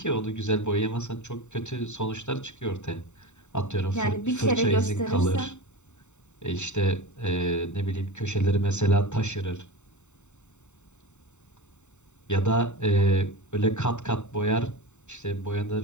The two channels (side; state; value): right; late; 0.84 ms